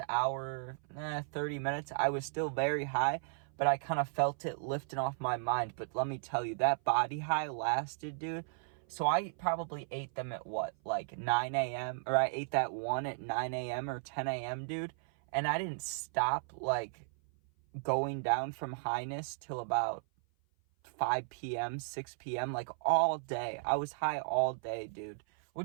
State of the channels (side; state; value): left; silent; 54 dB below the other